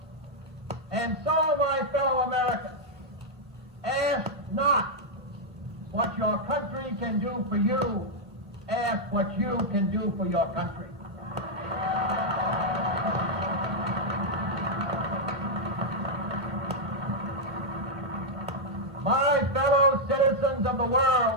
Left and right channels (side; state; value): both; normal; correlation -0.04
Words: And so, my fellow Americans, ask not what your country can do for you, ask what you can do for your country. the